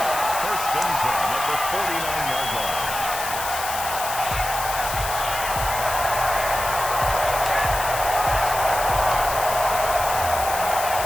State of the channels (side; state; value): left; noise; hiss, 6 dB below the sound